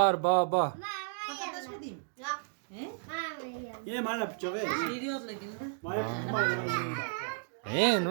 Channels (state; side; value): silent; left; digital silence